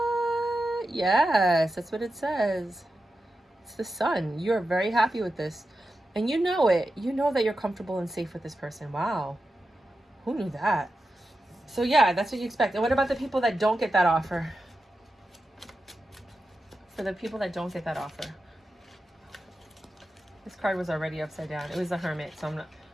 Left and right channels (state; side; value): normal; both; correlation 0.91